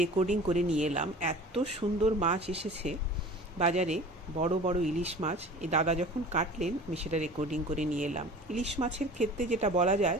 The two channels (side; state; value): both; normal; correlation 0.41